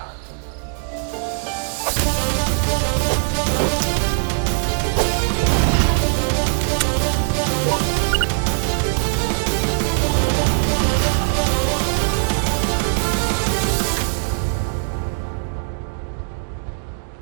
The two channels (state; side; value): silent; left; 58 dB below the other